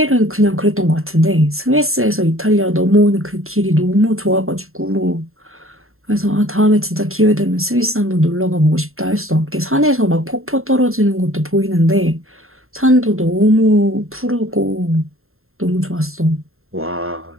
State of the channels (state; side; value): late; left; 0.61 ms